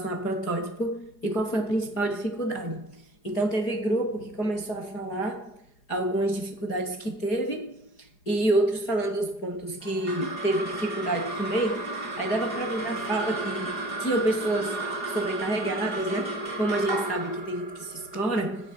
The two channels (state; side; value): late; right; 4.8 ms